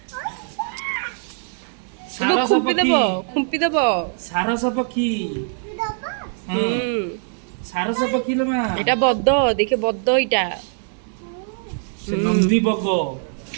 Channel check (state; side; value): silent; left; 61 dB below the other